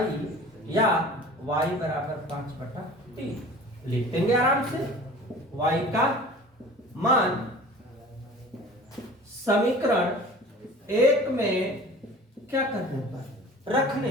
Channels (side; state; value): both; normal; correlation 0.43